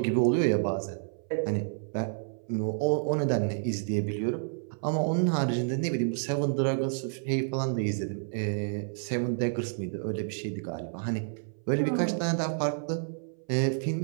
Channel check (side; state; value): left; silent; 58 dB below the other